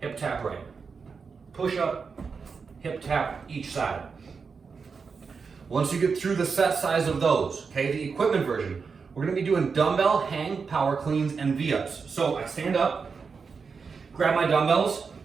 hip tap right. Push up, hip tap each side. Once you get through the set size of those, okay, the equipment version, we're gonna be doing dumbbell hang, power cleans, and V-ups. So I stand up, grab my dumbbells.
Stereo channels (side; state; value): left; quieter; 5.3 dB